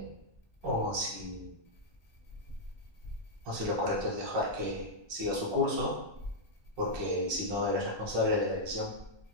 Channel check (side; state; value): left; late; 1.2 ms